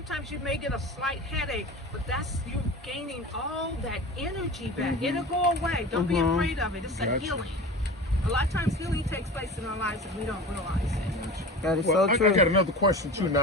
you may get a slight headache, but that's you gaining all that energy back. It'll go away. Don't be afraid of it. It's a Gotcha. healing. A lot of times healing takes place in our lives and we don't realize it. That is Well, so I true. got another question too.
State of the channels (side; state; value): both; normal; correlation 0.34